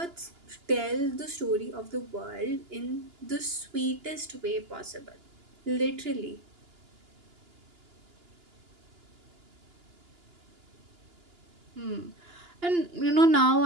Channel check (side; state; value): left; late; 2.9 ms